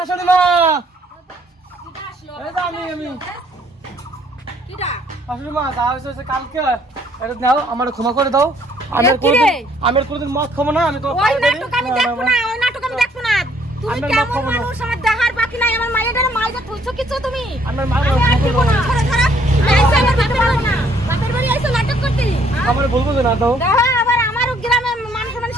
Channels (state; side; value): normal; both; correlation 0.64